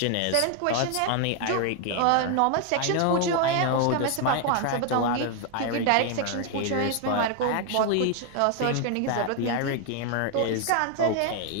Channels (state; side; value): different; both; correlation 0.00